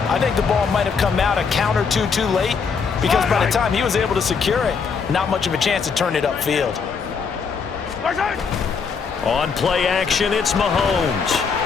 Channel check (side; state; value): right; quieter; 5.7 dB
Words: I think the ball might have come out a count or two too late because by the time he was able to secure it, not much of a chance to turn it upfield. On play action, it's Mahomes.